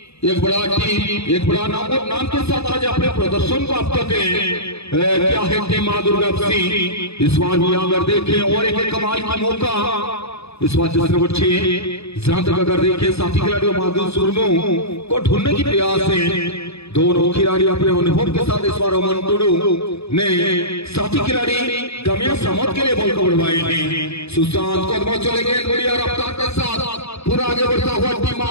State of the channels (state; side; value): late; right; 0.79 ms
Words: एक बड़ा टीम एक बड़ा नाम के साथ आज अपने प्रदर्शन को आप तक क्या है टीम मां दुर्गा सिंह इस बार भी अगर देखें और एक कमाल का मौका इस बार जिस नंबर 6 जहां तक अगर देखें साथी खिलाड़ियों माधुरुष मुर्मू को ढूंढने की प्रयास है दोनों खिलाड़ी अपने अनुभव के साथ इस बार अमन टुडू ने साथी खिलाड़ी गमिया समत के लिए बॉल को बढ़वाए हैं। सुशांत कदमों चले गए बढ़िया रफ्तार के साथ पूरा आगे बढ़ता हुआ टीम